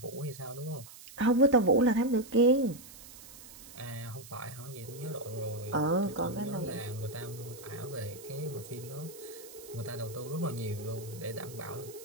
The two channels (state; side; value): noise; right; hiss, 17 dB below the sound